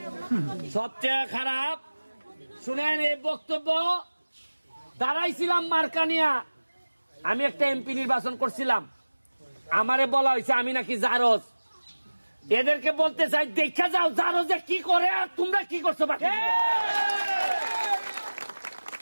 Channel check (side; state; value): both; inverted; correlation -1.00